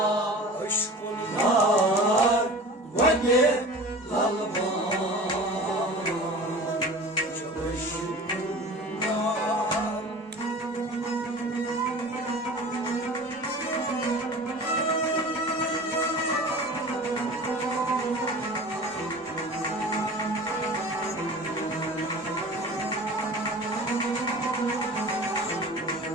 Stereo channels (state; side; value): normal; both; correlation 0.38